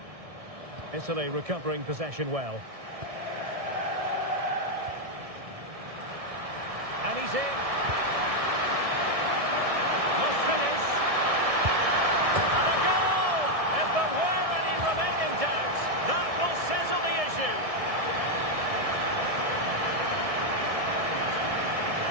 Italy recovering possession well. And he's in. Must finish. And a goal! If there were any remaining doubts, that will settle the issue.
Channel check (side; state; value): left; late; 1.6 ms